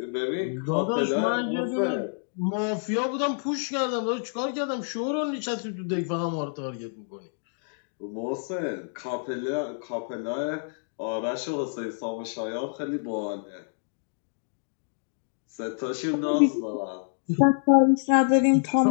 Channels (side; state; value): right; silent; digital silence